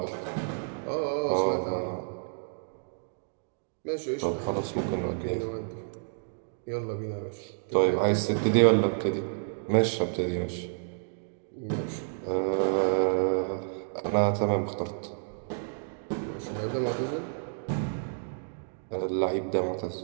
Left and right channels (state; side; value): silent; left; digital silence